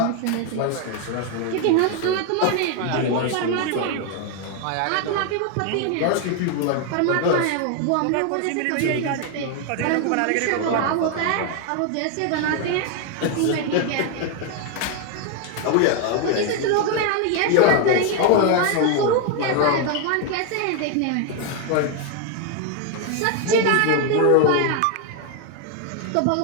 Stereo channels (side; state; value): both; different; correlation 0.01